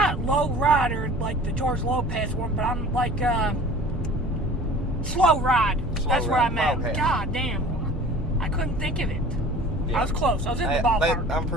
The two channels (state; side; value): normal; both; correlation 0.44